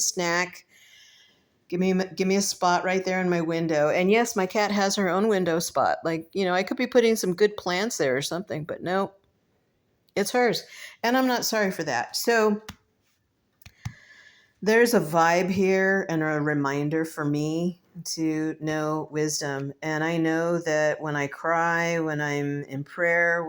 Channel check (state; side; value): identical; both; correlation 1.00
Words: Give me a spot right there in my window. And yes, my cat has her own window spot. Like, I could be putting some good plants there or something, but no, it's hers. And I'm not sorry for that. So there's a vibe here and a reminder for me to know wisdom. And I know that when I cry, when I'm in prayer,